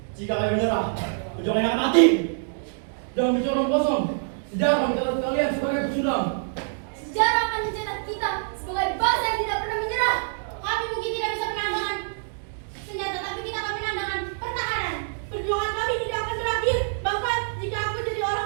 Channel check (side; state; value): left; silent; digital silence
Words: Jika kami menyerah, perjuangan akan mati. Jangan bicara omong kosong. Sejarah mencatat kalian sebagai pecundang. Sejarah akan mencetak kita sebagai bangsa yang tidak pernah menyerah. Kami mungkin tidak bisa menandangkan senjata, tapi kita akan menandangkan pertahanan. Perjuangan kami tidak akan berakhir. Bahkan jika aku jadi